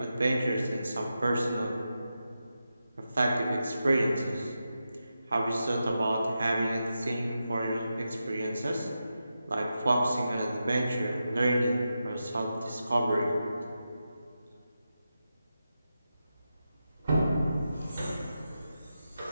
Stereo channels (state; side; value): inverted; both; correlation -0.89